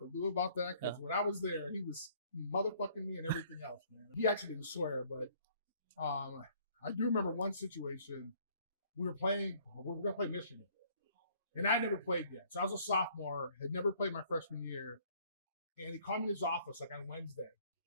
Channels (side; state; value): both; inverted; correlation -0.60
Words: Lou about that because when I was there, he was motherfucking me and everything else, man. He actually didn't swear, but I do remember one situation. We were going to play Michigan, and I never played yet. So I was a sophomore, had never played my freshman year, and he called me in his office like on Wednesday.